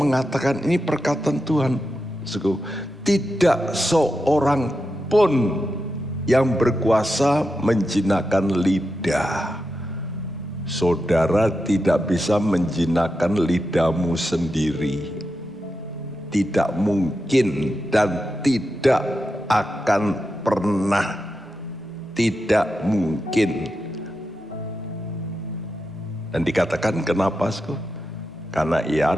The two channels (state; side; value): normal; both; correlation 0.88